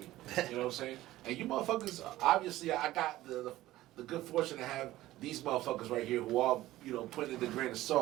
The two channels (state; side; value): quieter; left; 15.9 dB